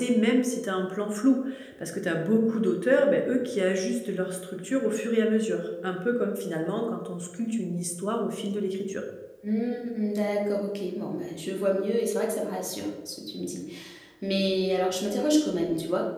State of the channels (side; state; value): both; identical; correlation 1.00